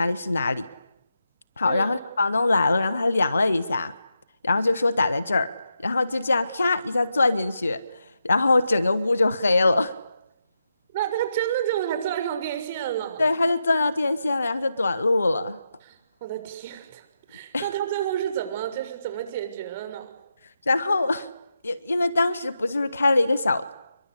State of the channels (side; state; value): both; inverted; correlation -0.86